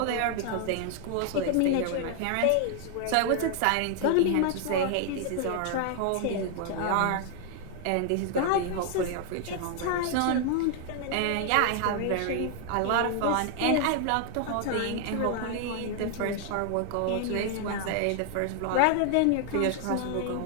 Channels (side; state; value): both; different; correlation 0.00